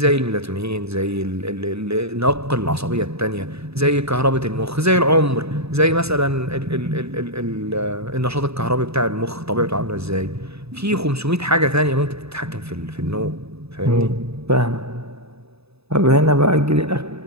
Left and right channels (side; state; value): left; late; 0.79 ms